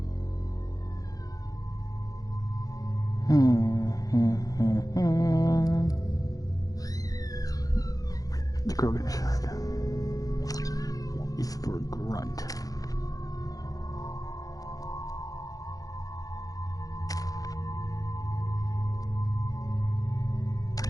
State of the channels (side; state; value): right; late; 0.17 ms